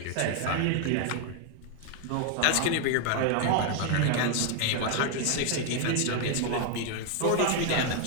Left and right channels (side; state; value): both; different; correlation 0.00